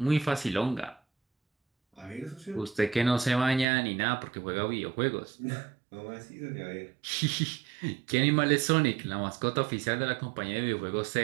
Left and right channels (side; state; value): left; drops out; at 3.7 s